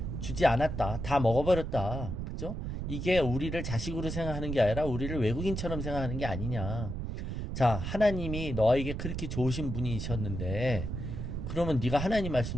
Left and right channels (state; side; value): noise; right; rumble, 4 dB below the sound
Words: 주지 않았다. 다 먹어버렸다. 그죠? 이게 우리를 자식으로 생각하는 게 아니라 우리를 외국인처럼 생각하는 게 아니냐. 자, 하나님이 너에게 그렇게 좋으신 분이셨는데 그러면 네가 하나님 말씀